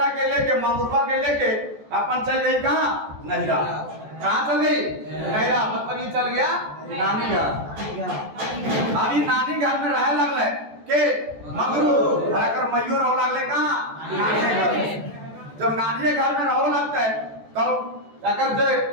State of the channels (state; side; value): late; left; 14 ms